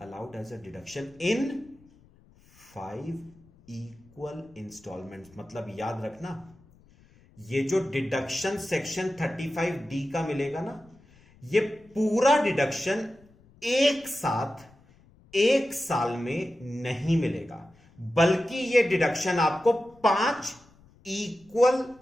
allowed as a deduction in 5 equal instalments. मतलब याद रखना, ये जो डिडक्शन सेक्शन 35D का मिलेगा ना, ये पूरा डिडक्शन एक साथ 1 साल में नहीं मिलेगा, बल्कि ये डिडक्शन आपको 5 इक्वल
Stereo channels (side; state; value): left; noise; rumble, 28 dB below the sound